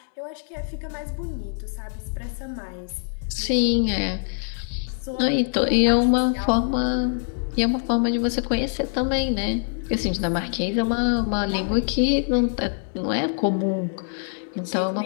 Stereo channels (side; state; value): right; silent; 62 dB below the other